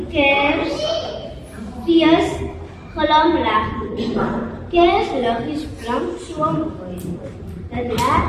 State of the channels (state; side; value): identical; both; correlation 1.00